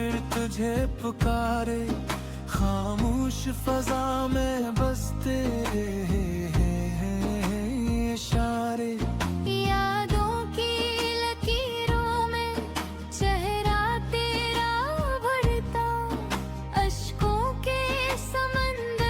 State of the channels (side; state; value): both; identical; correlation 1.00